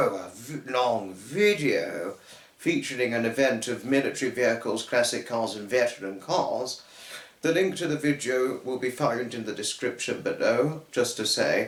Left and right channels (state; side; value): identical; both; correlation 1.00